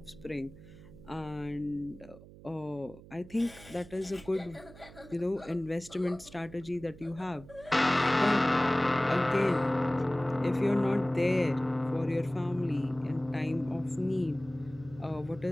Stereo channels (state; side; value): noise; right; hum, 19 dB below the sound